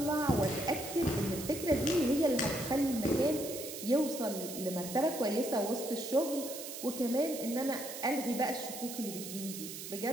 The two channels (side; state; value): right; noise; hiss, 9 dB below the sound